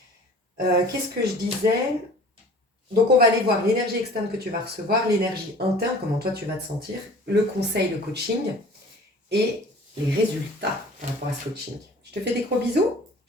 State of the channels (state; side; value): normal; both; correlation 0.45